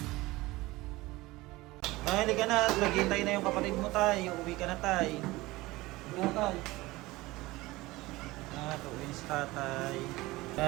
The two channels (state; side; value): quieter; left; 20.0 dB